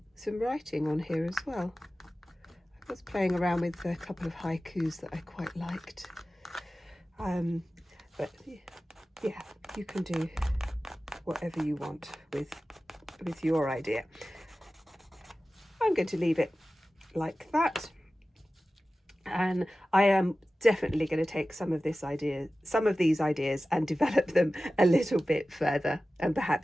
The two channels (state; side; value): normal; both; correlation 0.95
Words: writing on here as well. I was playing around with a couple of haikus that I quite liked. But yeah, you can do whatever you want with your idea. I'm going to leave it like that. And I am definitely going to take some of these ideas and develop them a little bit further, and